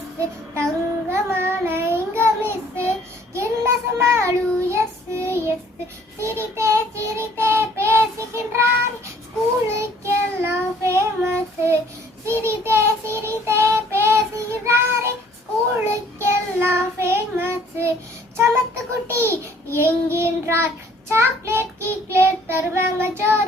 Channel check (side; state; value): both; normal; correlation 0.58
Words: தங்கமான எங்க miss என்ன சமாளு எஸ் எஸ் சிரித்தே சிரித்தே பேசுகின்றார் ஸ்கூலுக்கெல்லாம் ஃபேமஸ் சிரித்தே சிரித்தே பேசுகிறாரே ஸ்கூலுக்கெல்லாம் ஃபேமஸ் சமத்து குட்டி என்கின்றார் சாக்லேட் கீக்லேட் தருவாங்க